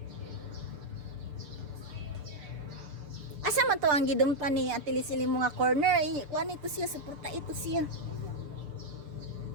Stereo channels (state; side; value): late; left; 6.8 ms